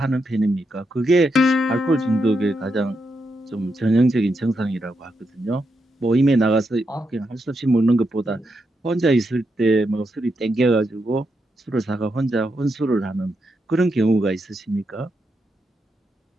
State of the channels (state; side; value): normal; both; correlation 0.83